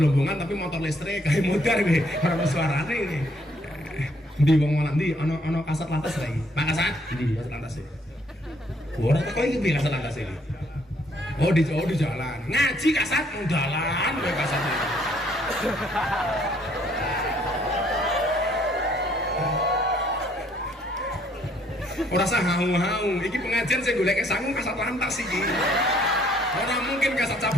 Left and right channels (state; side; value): normal; both; correlation 0.65